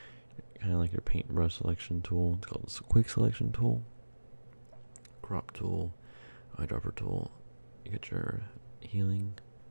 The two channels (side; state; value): both; inverted; correlation -1.00